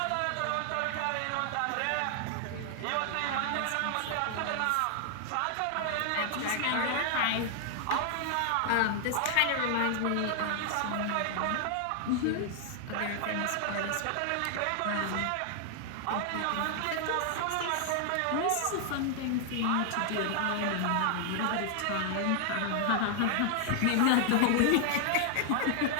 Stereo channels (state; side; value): different; both; correlation 0.00